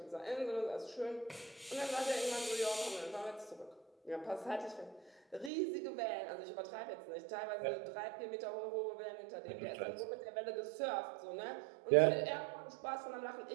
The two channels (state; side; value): drops out; left; at 5.5 s